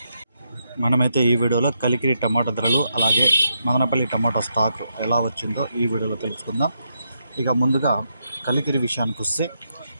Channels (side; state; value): both; inverted; correlation -0.81